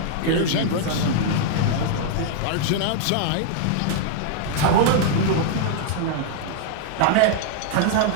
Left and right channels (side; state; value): both; different; correlation -0.01